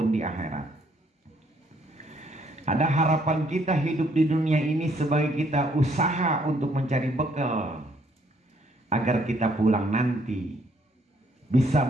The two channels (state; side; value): normal; both; correlation 0.67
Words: di akhirat. Ada harapan kita hidup di dunia ini sebagai kita usaha untuk mencari bekal agar kita pulang nanti bisa